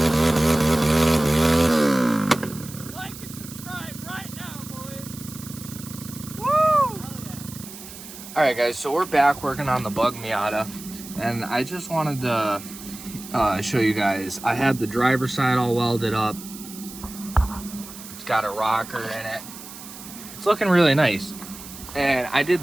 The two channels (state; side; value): noise; right; hiss, 14 dB below the sound